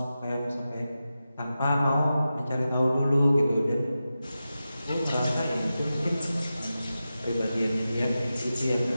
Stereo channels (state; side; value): inverted; both; correlation -0.92